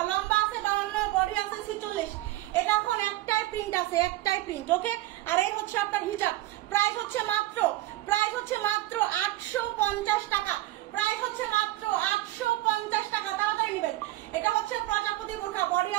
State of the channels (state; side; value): quieter; left; 16.6 dB